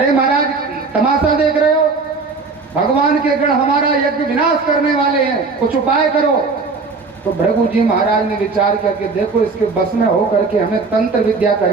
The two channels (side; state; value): left; quieter; 4.2 dB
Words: महाराज तमाशा देख रहे हो, भगवान के गण हमारा यज्ञ विनाश करने वाले हैं, कुछ उपाय करो। तो भृगु जी महाराज ने विचार किया कि देखो इसके बस में हो करके हमें तंत्र विद्या